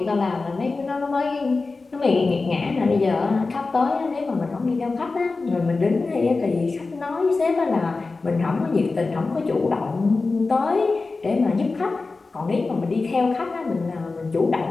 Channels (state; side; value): quieter; right; 3.8 dB